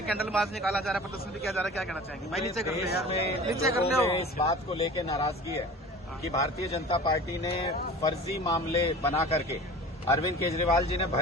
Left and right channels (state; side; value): normal; both; correlation 0.39